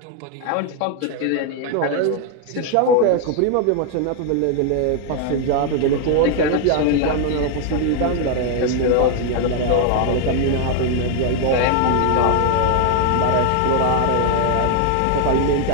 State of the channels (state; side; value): different; both; correlation 0.00